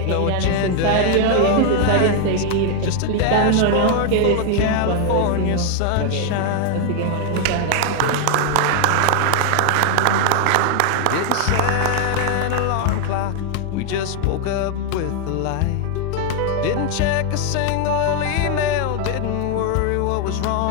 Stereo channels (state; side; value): different; both; correlation 0.00